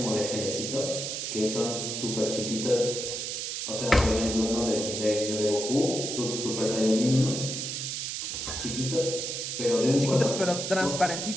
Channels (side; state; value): right; noise; hiss, 4 dB below the sound